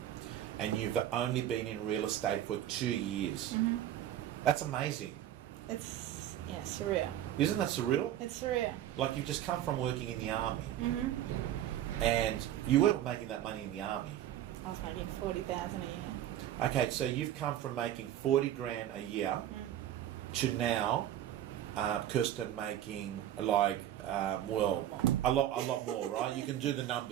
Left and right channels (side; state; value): left; quieter; 11.9 dB